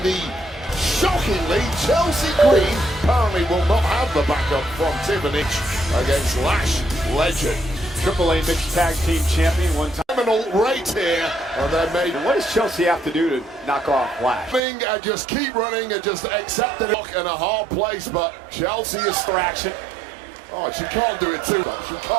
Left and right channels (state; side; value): drops out; left; at 14.6 s